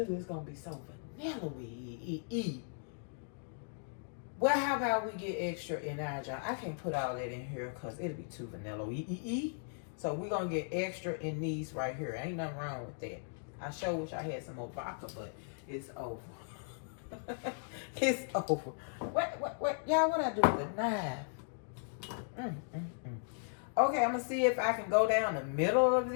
do is going to be so vanilla-y. Well, how about we get extra in our jar? I can't put all that in here because it'll be too vanilla-y. So we're going to get extra in these right here. Ain't nothing wrong with that. I sure wish I had some more vodka, but it's over. It's over. What? Y'all, what I do with the knife? Okay, I'm going to see if I can go down the middle of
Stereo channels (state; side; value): silent; right; digital silence